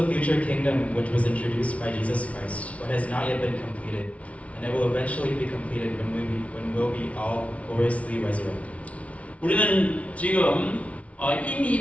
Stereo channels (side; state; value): right; late; 0.065 ms